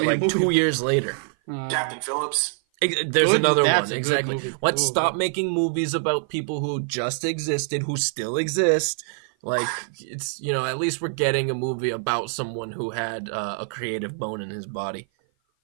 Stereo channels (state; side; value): silent; left; 55 dB below the other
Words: 2 years later. Captain Phillips. There's another one, exactly. Movie. Let's stop making movies about people who just existed, who still exist. It's, at least we're getting a movie about someone who had a creative bone in his body.